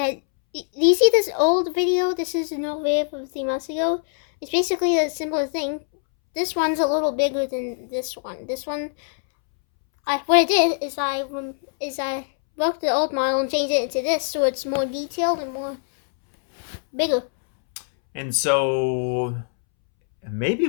you see this old video. This is an old video from 3 months ago. It's basically a similar thing. This one's a little bigger than this one. What I did is I broke the old model and changed it into this, so it's more detailed and more bigger. And so maybe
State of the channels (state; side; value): silent; right; 64 dB below the other